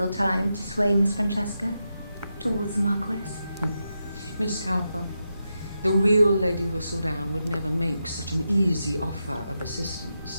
time to sway Miss Francesca towards the Marquess. Miss Cowper, the real Lady Whistledown would never make such an easy offer of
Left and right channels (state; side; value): inverted; both; correlation -0.87